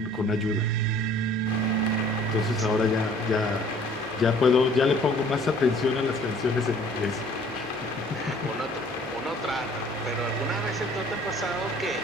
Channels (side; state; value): both; normal; correlation 0.54